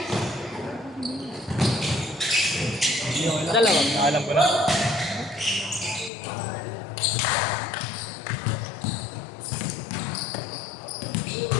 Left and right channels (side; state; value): right; drops out; at 6.1 s